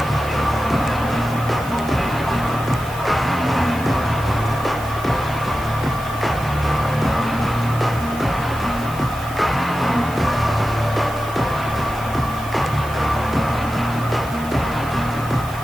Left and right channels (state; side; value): noise; right; hiss, 17 dB below the sound